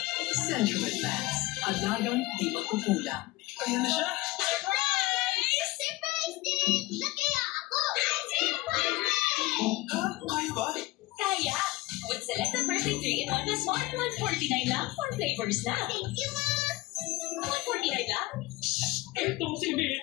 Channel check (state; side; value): quieter; right; 19.7 dB